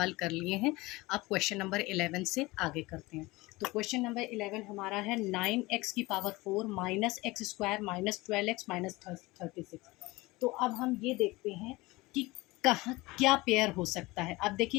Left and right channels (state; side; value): quieter; right; 21.5 dB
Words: कर लिए हैं। अब क्वेश्चन नंबर 11 से आगे करते हैं। तो क्वेश्चन नंबर 11 हमारा है 9x की power 4 minus x square minus 12x minus 36। तो अब हम ये देखते हैं कि कहाँ क्या पेयर हो सकता है। अब